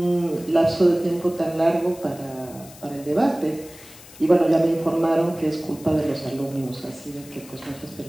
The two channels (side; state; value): left; noise; hiss, 20 dB below the sound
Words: lapso de tiempo tan largo para el debate. Y bueno, ya me informaron que es culpa de los alumnos, así de que pues muchas